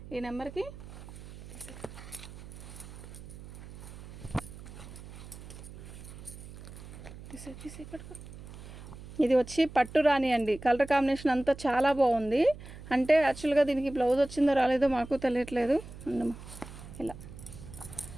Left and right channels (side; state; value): right; noise; hum, 14 dB below the sound